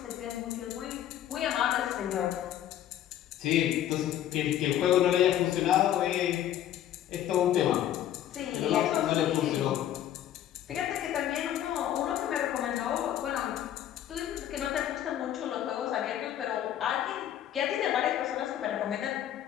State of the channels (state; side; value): quieter; right; 11.5 dB